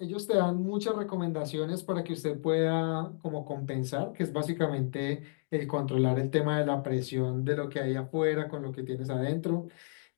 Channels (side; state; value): right; silent; 56 dB below the other